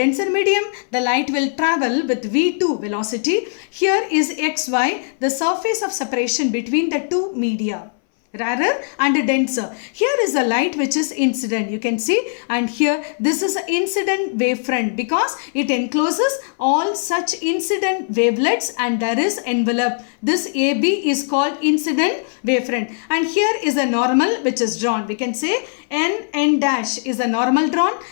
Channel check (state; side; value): silent; right; 62 dB below the other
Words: medium, the light will travel with v2 velocity. Here is xy, the surface of separation between the two media, rarer and denser. Here is a light which is incident, you can see, and here this is incident wavefront because it encloses all such incident wavelets and there is envelope. This AB is called incident wavefront, and here is a normal which is drawn. We can say N dash is a normal drawn,